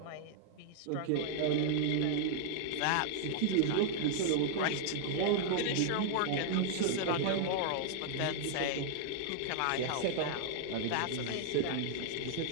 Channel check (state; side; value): different; both; correlation 0.00